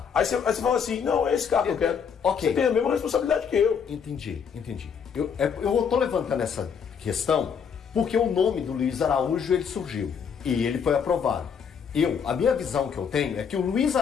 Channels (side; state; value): right; quieter; 6.9 dB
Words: Aí você fala assim, não, é esse carro que eu quero. Ok. Você tem a mesma responsabilidade que eu. Entendi. Eu tô levantando essa questão porque o nome do Luiz Araújo ele surgiu e ele foi aprovado. A minha visão que eu tenho é que o Luiz